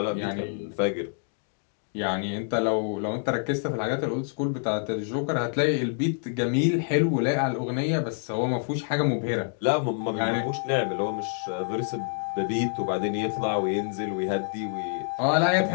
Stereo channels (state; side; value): silent; right; digital silence